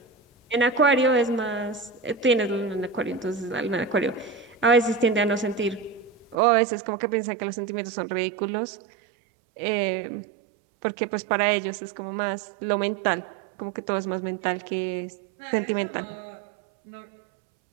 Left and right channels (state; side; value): drops out; left; at 6.4 s